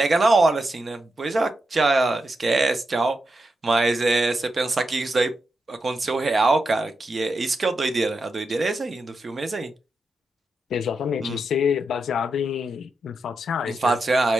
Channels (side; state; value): both; normal; correlation 0.87